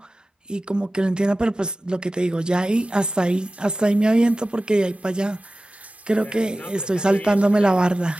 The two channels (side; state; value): both; normal; correlation 0.96